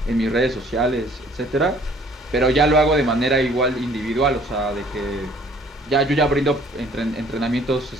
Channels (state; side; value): normal; both; correlation 0.57